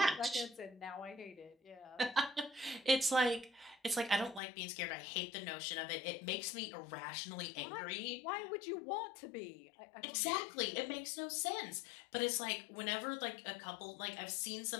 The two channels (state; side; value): drops out; right; at 4.4 s